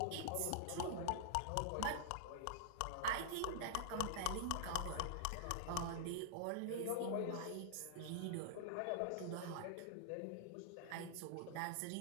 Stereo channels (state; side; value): different; both; correlation -0.02